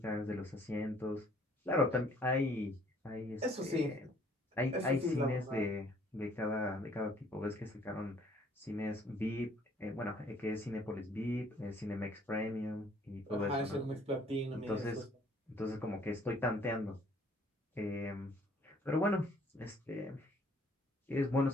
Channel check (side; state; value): both; normal; correlation 0.60